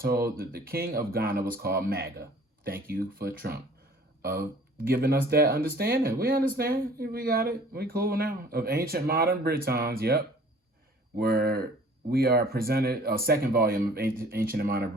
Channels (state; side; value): normal; both; correlation 0.51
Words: that the king of Ghana was called Maga. Thank you for Trump. Giving us that understanding. We understand. We got it. We cool now. Of ancient modern Britons, yep. Where we are presented, a second volume of Ancient and Modern